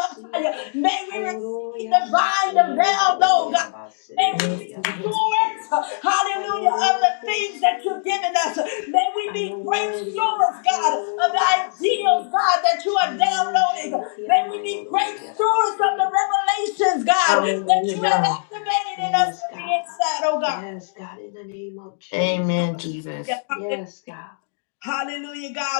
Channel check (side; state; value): right; silent; digital silence